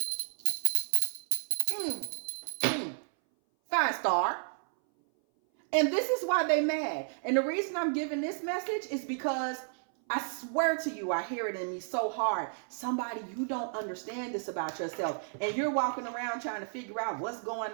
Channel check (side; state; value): left; silent; 56 dB below the other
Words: 5-star. And this is why they mad. And the reason I'm giving this message is because I swear to you, I hear it in me so hard. Somebody, you don't understand this about yourself. And you're walking around trying to figure out what's